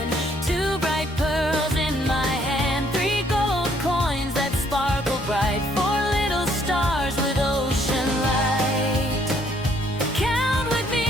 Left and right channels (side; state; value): both; normal; correlation 0.66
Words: 2 bright pearls in my hand, 3 gold coins that sparkle bright, 4 little stars with ocean light. Count with